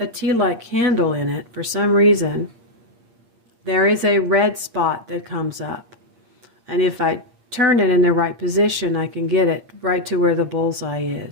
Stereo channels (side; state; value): left; late; 8.6 ms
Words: a tea light candle in it, for some reason, there is a red spot that comes up. And if I turn it in the right position, I can get it right to where the bullseye